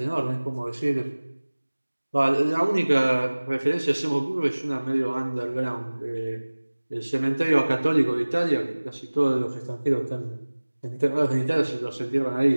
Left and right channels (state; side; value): inverted; both; correlation -1.00